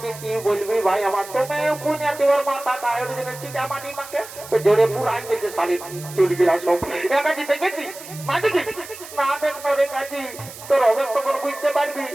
কি বলবি ভাই আমার, তুমি কুনিয়াতে ওর মাথা কায়ের জন্য চিটা মাটি মাকে তো ঝরে পুরাই গেছে শাড়ি চুল গিলা সব। এ কাজী দেখেছি মা, দেখি না দেখো রে কাজী, তোর হবে তখন বুঝতে পারবি।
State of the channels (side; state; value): right; noise; hiss, 15 dB below the sound